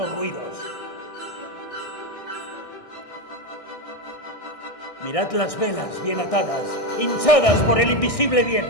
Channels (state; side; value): late; right; 1.6 ms